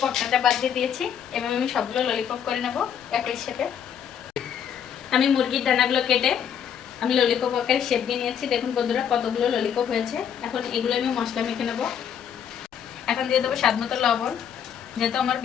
পটকাটা বাদ দিয়ে দিয়েছি। এভাবে আমি সবগুলো ললিপপ করে নেব একই শেপে। আমি মুরগির ডানাগুলো কেটে আমি ললিপপ আকারে শেপ দিয়ে নিয়েছি। দেখুন বন্ধুরা, কতগুলো ললিপপ হয়েছে। এখন এগুলো আমি মশলা মেখে নেব। এখন দিয়ে দেবো স্বাদ মতো লবণ। যেহেতু আমার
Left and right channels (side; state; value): right; quieter; 8.5 dB